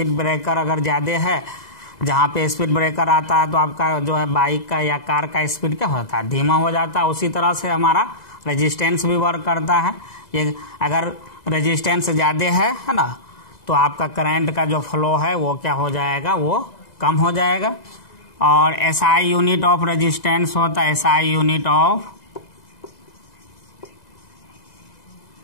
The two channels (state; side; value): late; right; 2.0 ms